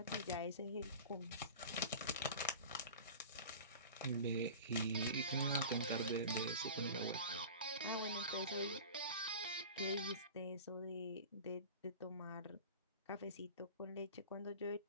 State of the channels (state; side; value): inverted; both; correlation -0.36